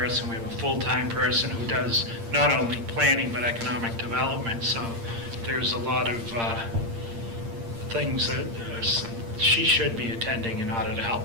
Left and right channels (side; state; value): left; late; 8.7 ms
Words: We have a full-time person who does not only planning but economic development. So there's a lot of things that she should be attending in order to